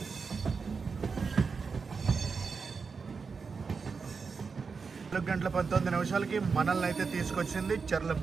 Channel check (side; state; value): left; quieter; 5.1 dB